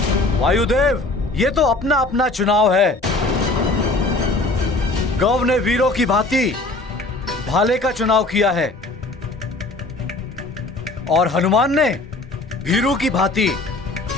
वायुदेव, ये तो अपना अपना चुनाव है। गौ ने वीरों की भांति भाले का चुनाव किया है और हनुमान ने भीरू की भांति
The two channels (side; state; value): right; quieter; 3.0 dB